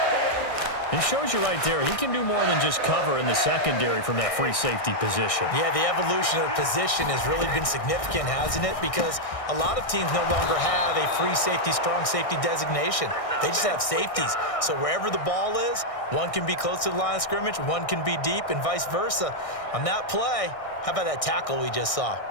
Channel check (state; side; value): late; right; 1.6 ms